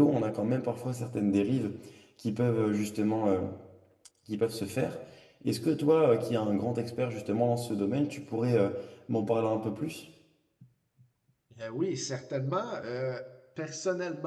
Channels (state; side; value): identical; both; correlation 1.00